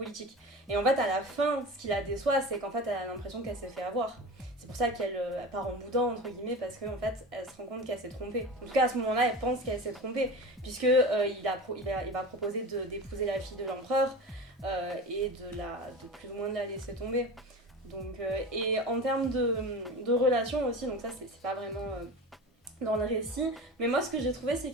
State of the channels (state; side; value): normal; both; correlation 0.31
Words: Et en fait à la fin, ce qui la déçoit, c'est qu'en fait elle a l'impression qu'elle s'est fait avoir. C'est pour ça qu'elle part en boudin entre guillemets, parce qu'en fait elle se rend compte qu'elle s'est trompée. En tout cas à ce moment-là, elle pense qu'elle s'est trompée, puisque il va proposer d'épouser la fille de l'empereur et de plus ou moins de la laisser tomber. Donc, et en termes de relations aussi, donc ça c'est pas vraiment dans le récit, mais moi ce que j'ai trouvé, c'est